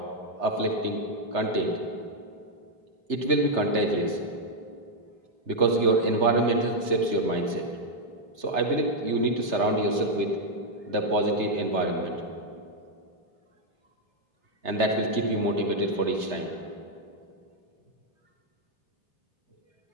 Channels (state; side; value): late; left; 3.3 ms